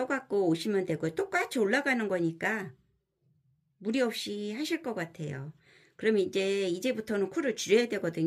오시면 되고 똑같이 올라가는 거니까 무리 없이 하실 것 같아요. 그러면 이제부터는 코를 줄여야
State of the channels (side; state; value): both; identical; correlation 1.00